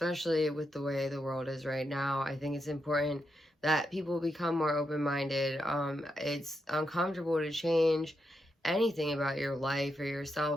with the way the world is right now. I think it's important that people become more open-minded. It's uncomfortable to change anything about your life or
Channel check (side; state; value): both; normal; correlation 0.84